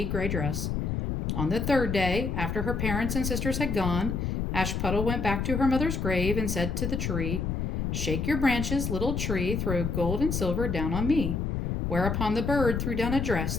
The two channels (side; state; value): left; noise; rumble, 1 dB below the sound